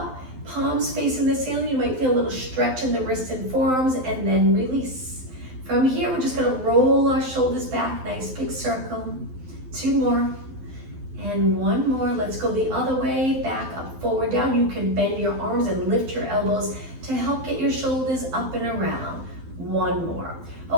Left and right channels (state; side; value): late; left; 12 ms